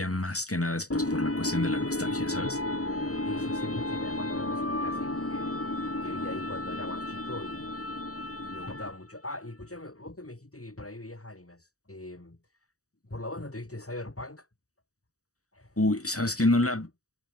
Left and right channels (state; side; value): late; right; 0.66 ms